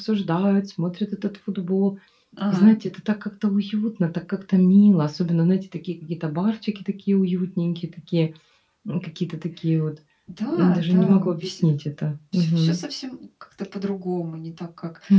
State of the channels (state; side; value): identical; both; correlation 1.00